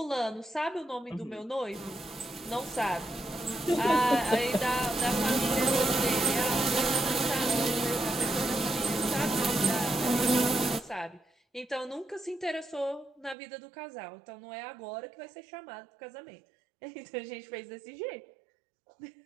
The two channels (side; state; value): left; drops out; at 13.4 s